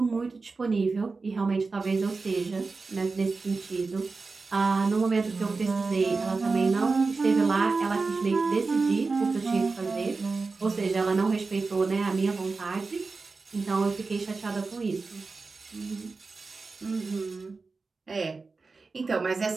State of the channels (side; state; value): left; quieter; 4.1 dB